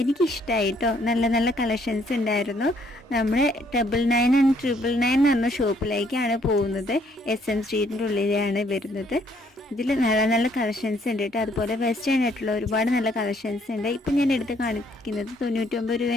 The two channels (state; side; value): normal; both; correlation 0.66